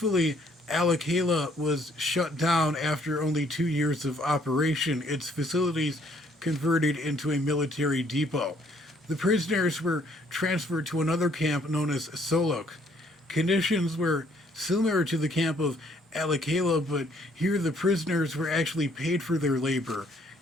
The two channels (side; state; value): both; normal; correlation 0.65